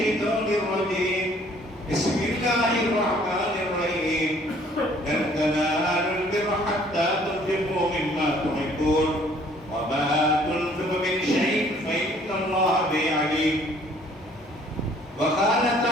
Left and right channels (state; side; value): normal; both; correlation 0.59